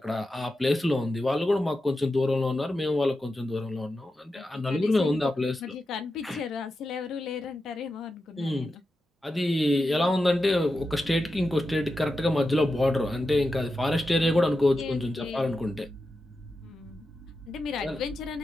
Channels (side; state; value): both; normal; correlation 0.90